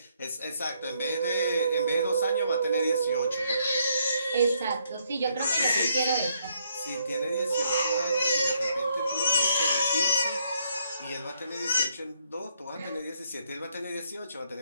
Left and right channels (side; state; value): both; inverted; correlation -0.72